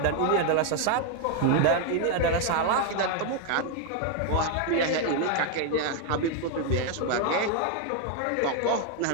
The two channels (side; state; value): both; different; correlation 0.01